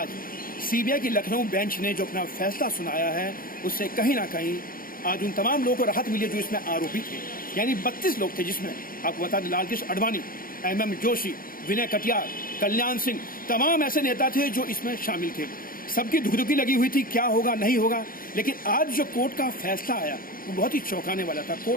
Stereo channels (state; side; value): late; right; 0.41 ms